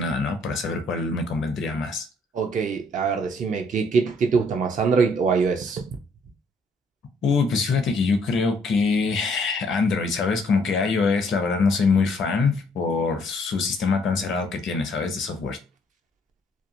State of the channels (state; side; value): normal; both; correlation 0.65